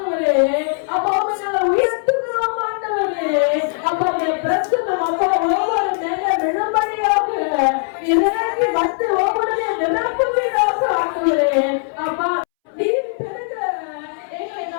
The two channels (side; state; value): right; silent; 66 dB below the other